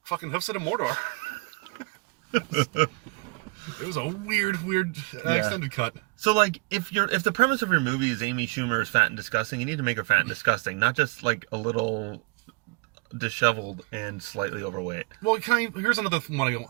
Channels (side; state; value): left; quieter; 27.6 dB